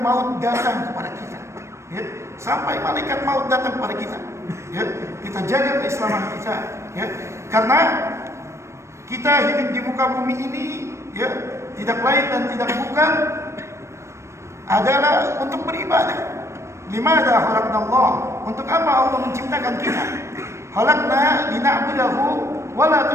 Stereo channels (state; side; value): late; left; 0.13 ms